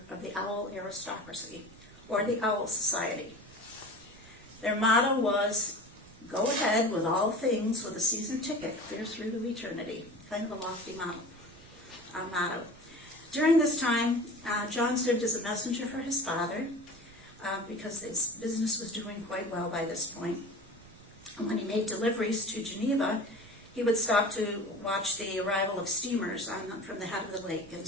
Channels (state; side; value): noise; right; rumble, 23 dB below the sound